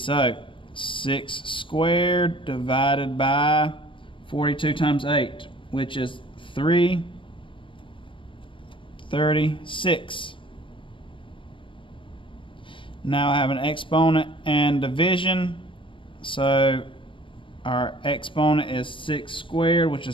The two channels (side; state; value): right; late; 0.25 ms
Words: So 6 squared divided by 42 times 8, which is 336. Now I have an exponent and division. So our exponent is 6 squared, which